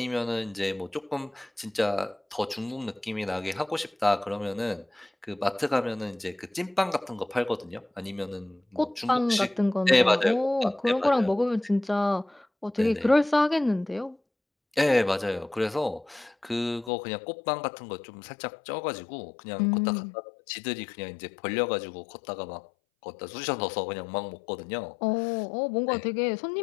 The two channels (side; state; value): right; drops out; at 16.9 s